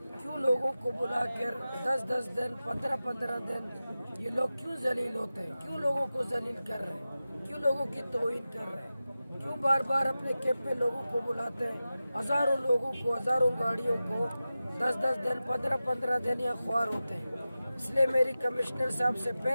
क्यों लोगों को बुलाकर 10-10 दिन 15-15 दिन ये लोग क्यों जलील होते हैं, क्यों लोगों को जलील कर रहे हैं, क्यों लोगों की तौहीन कर रहे हैं, क्यों बार बार अपने कैंप में लोगों को बुलाते हैं। हजारों लोगों को, हजारों गाड़ियों को 10-10 दिन 15-15 दिन या ख्वार होते हैं। इसलिए मेरी कमिश्नर साहब से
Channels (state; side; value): inverted; both; correlation -0.94